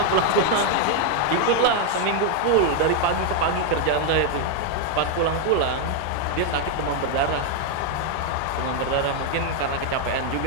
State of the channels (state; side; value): different; both; correlation 0.01